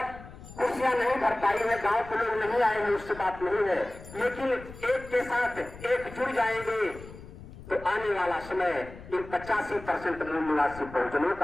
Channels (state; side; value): noise; left; rumble, 16 dB below the sound